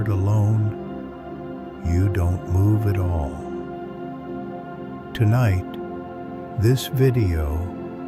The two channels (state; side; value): identical; both; correlation 1.00